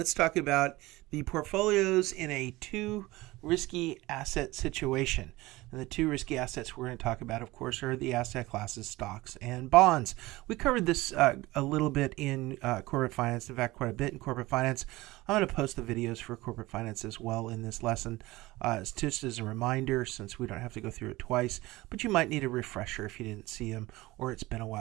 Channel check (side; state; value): left; quieter; 19.8 dB